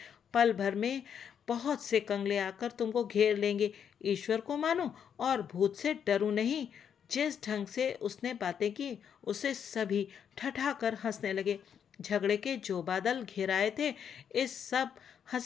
पल भर में बहुत से कंगले आकर तुमको घेर लेंगे। ईश्वर को मानो और भूत से डरो नहीं। जिस ढंग से उसने बातें की, उसे सभी ठठाकर हंसने लगे। झगड़े के जो बादल घिराए थे, इस सब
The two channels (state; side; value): quieter; right; 8.0 dB